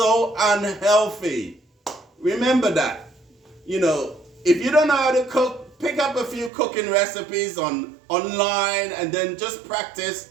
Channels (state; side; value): drops out; left; at 6.5 s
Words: unhealthy. Remember that. If you don't know how to cook, pick up a few cooking recipes online and then just practice,